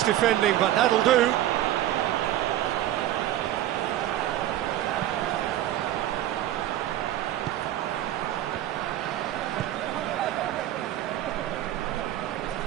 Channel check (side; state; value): left; quieter; 13.3 dB